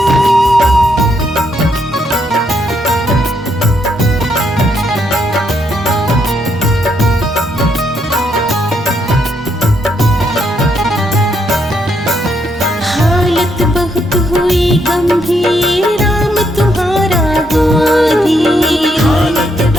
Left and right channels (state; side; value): normal; both; correlation 0.76